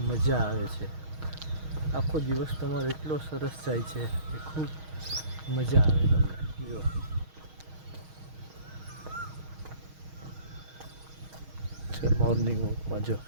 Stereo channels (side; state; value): left; late; 6.4 ms